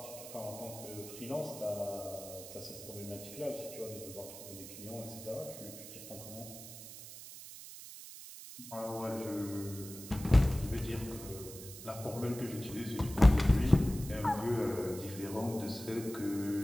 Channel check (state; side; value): noise; right; hiss, 13 dB below the sound